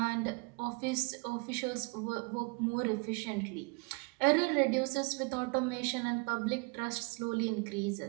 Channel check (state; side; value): quieter; left; 31.3 dB